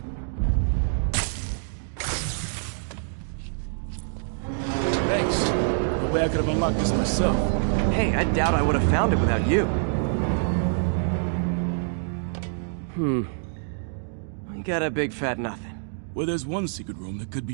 Thanks. No way I could have unlocked this myself. Hey, I doubt I would have found it without you. We got a big fat nothing. Well, there's one secret room that could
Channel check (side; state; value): left; silent; digital silence